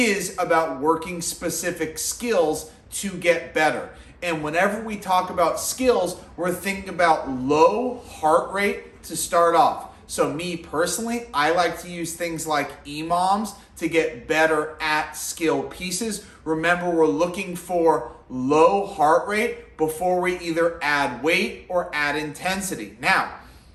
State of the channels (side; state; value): both; identical; correlation 1.00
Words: about working specific skills to get better. And whenever we talk about skills, we're thinking about low heart rate to start off. So me personally, I like to use things like EMOMs to get better at skill pieces. Remember, we're looking for low heart rate before we either add weight or add intensity. Now,